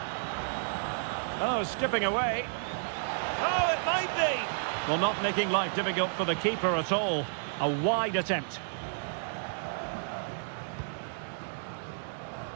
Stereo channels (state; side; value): silent; left; digital silence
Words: Oh, skipping away. Oh, it might be. Well, not making life difficult for the keeper at all. A wide attempt.